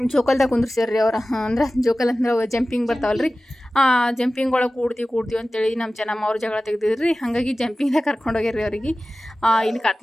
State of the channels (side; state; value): both; normal; correlation 0.96